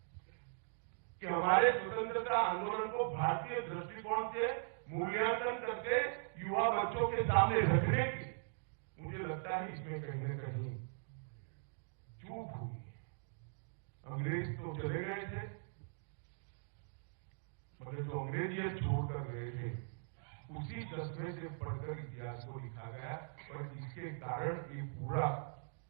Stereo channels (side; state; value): left; silent; digital silence